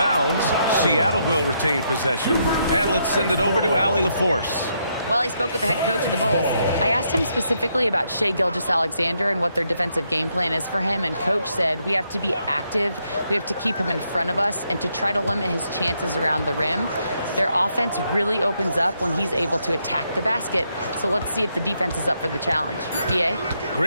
Seattle will retain possession. And let's send it over to Allie LaForce. Well, I spoke with the head coach of the Bulls. I asked him specifically about Shai Gilgeous-Alexander and what their defensive game plan is for him, and coach said we have to be active, we have to keep him in front of us, and to try to limit his chances around the rim. Their offense really opens up when he's able to attack the basket, so let's see if the defense is up for the challenge. BA?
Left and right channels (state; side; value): inverted; both; correlation -0.77